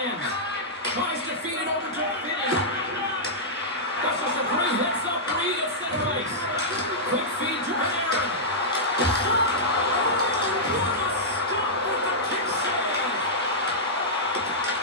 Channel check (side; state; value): both; normal; correlation -0.10